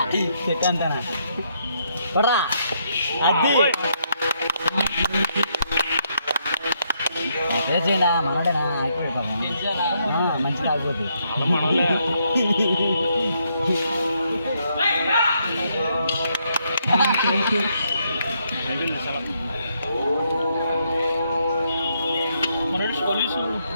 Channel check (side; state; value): both; inverted; correlation -0.75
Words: చెట్టు అంతా పడరా అది చేయండి మనడేనా మంచి తాగిపోతుంది